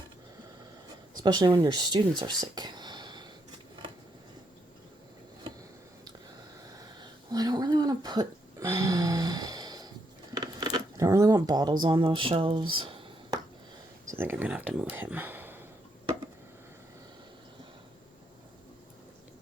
Especially when your students are sick. Well, I don't really want to put... I don't really want bottles on those shelves. So I think I'm going to have to move him.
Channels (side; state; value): both; normal; correlation 0.77